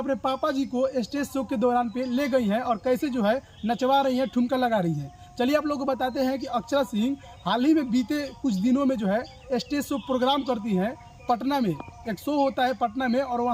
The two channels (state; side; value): identical; both; correlation 1.00